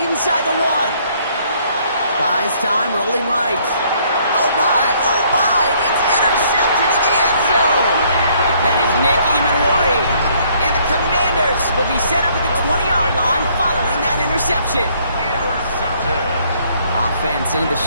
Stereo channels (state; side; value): inverted; both; correlation -0.64